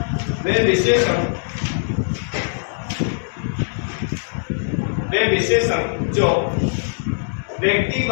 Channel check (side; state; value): right; silent; 65 dB below the other